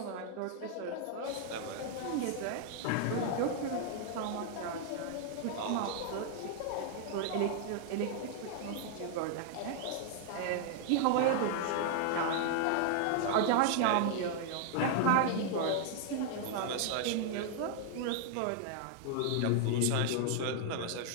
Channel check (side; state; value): both; different; correlation 0.00